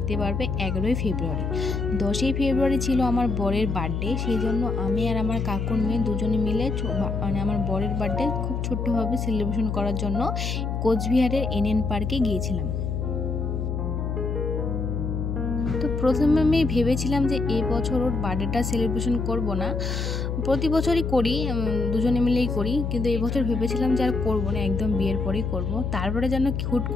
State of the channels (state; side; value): noise; left; hum, 2 dB below the sound